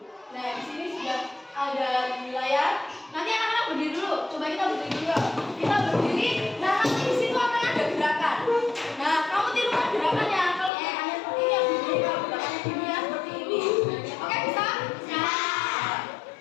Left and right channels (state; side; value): drops out; right; at 10.7 s